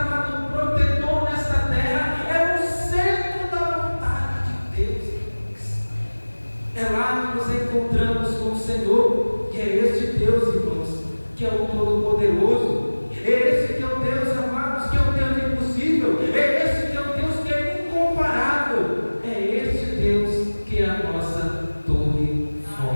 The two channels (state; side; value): inverted; both; correlation -1.00